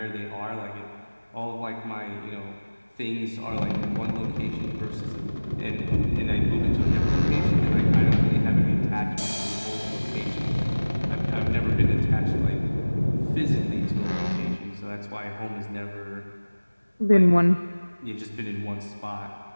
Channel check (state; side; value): inverted; both; correlation -1.00